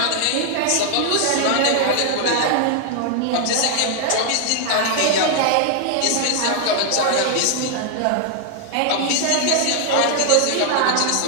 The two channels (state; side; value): different; both; correlation 0.00